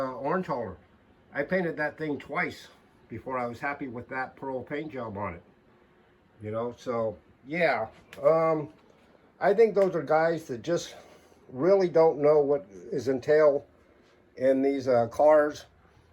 hauler. I painted that thing twice before I was happy with that pearl paint job on it. So yeah, I think those are guys that just really don't know what is entailed in these cars.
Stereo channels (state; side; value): identical; both; correlation 1.00